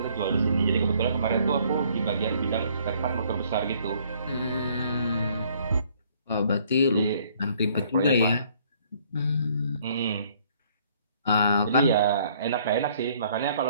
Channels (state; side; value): inverted; both; correlation -0.62